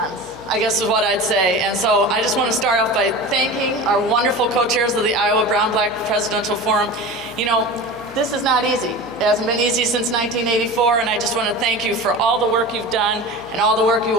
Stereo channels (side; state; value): left; noise; hum, 24 dB below the sound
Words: I guess is what I'd say. And so I just want to start off by thanking our wonderful co-chairs of the Iowa Brown-Black Presidential Forum. You know, this is not easy. It hasn't been easy since 1984, and I just want to thank you for all the work you've done and all the work you